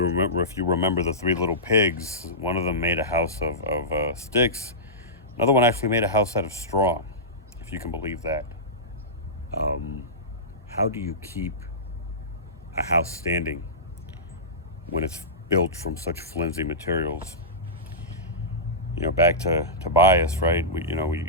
remember the Three Little Pigs, one of them made a house of sticks. Another one actually made a house out of straw, if you can believe that. How do you keep a house standing when it's built from such flimsy materials? Back to bias, right?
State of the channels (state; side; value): normal; both; correlation -0.17